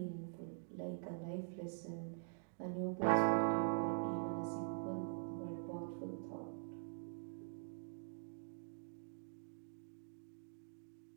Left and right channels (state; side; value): silent; left; digital silence